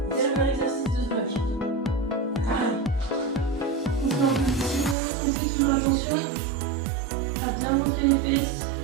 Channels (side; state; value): left; drops out; at 5.0 s